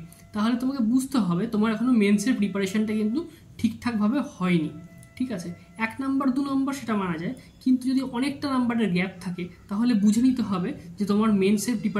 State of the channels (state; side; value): identical; both; correlation 1.00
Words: তাহলে তোমাকে বুঝতে হবে তোমার এখনও মেন্সের প্রিপারেশনটা কিন্তু ঠিকঠাকভাবে হয়নি। ঠিক আছে, 1 নাম্বার 2 নাম্বার সেটা মানা যায়, কিন্তু যদি অনেকটা নাম্বারের গ্যাপ থাকে তাহলে বুঝে নিতে হবে যে তোমার মেন্সের